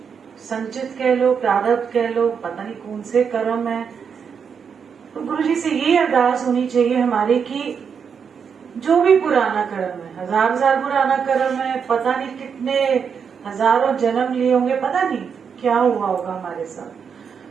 संचित कह लो, प्रारब्ध कह लो, पता नहीं कौन से कर्म है। तो गुरु जी से ये अरदास होनी चाहिए हमारी कि जो भी पुराना कर्म है, हजार पुराना कर्म है, पता नहीं कितने हजारों जन्म लिए होंगे, पता नहीं क्या हुआ होगा हमारे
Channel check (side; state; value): left; quieter; 6.7 dB